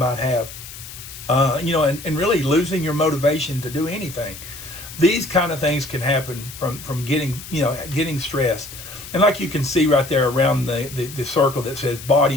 have, and really losing your motivation to do anything. these kind of things can happen from getting stressed. And like you can see right there around the circle that says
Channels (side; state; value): left; noise; hiss, 14 dB below the sound